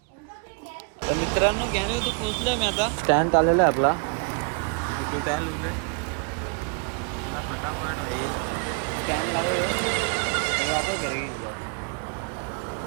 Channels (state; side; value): quieter; left; 35.9 dB